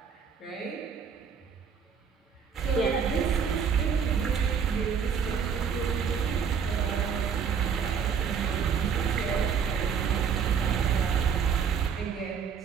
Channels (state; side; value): quieter; left; 6.8 dB